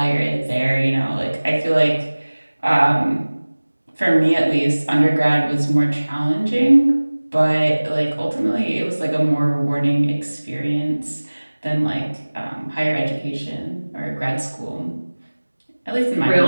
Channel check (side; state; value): both; inverted; correlation -1.00